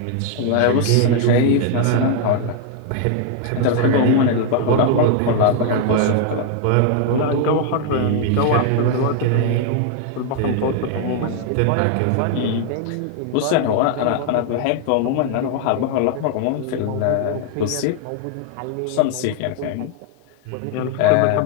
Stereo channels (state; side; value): different; both; correlation 0.00